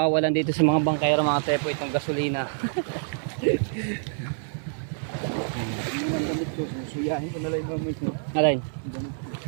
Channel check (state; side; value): silent; left; digital silence